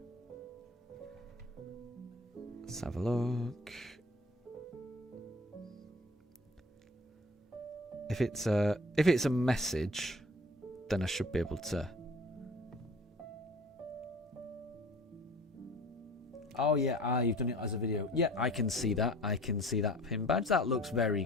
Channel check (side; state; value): both; normal; correlation 0.46